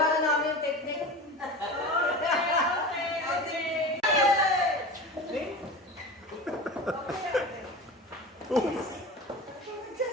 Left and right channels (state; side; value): normal; both; correlation 0.31